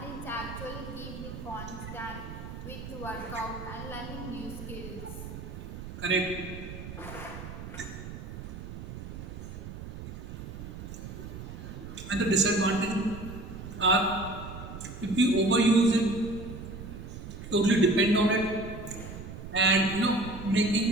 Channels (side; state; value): right; noise; rumble, 10 dB below the sound